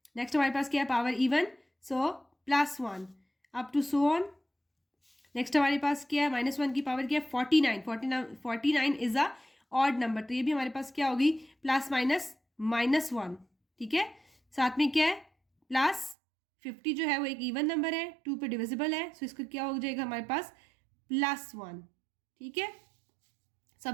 नेक्स्ट हमारे पास क्या है power even so +1 up to so on. Next हमारे पास क्या है -1 की पावर क्या है 49 इज अ ऑड नंबर, तो ये भी हमारे पास क्या होगी ±-1, ठीक है। साथ में क्या है +50 जो है वो एक इवन नंबर है, 2 पे डिविजिबल है, सो इसका क्या हो जाएगा हमारे पास +1, ठीक है।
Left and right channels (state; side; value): drops out; left; at 16.2 s